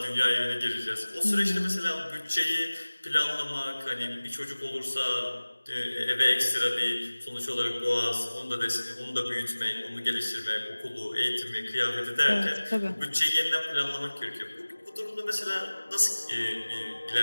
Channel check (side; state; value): both; inverted; correlation -1.00